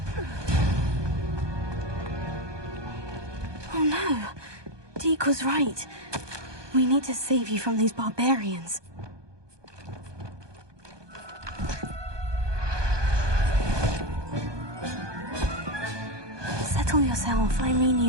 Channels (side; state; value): left; late; 1.2 ms